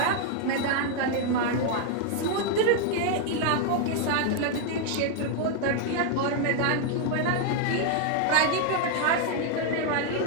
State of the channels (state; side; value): different; both; correlation 0.00